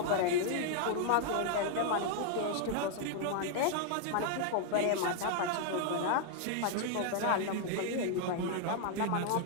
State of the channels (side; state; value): both; different; correlation 0.00